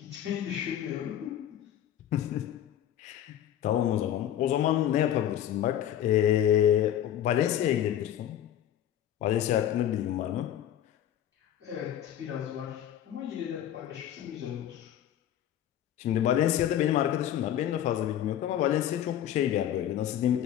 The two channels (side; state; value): right; quieter; 11.0 dB